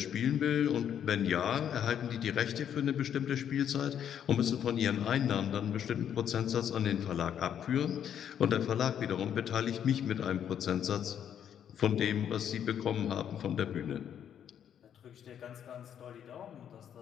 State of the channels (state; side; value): quieter; right; 9.2 dB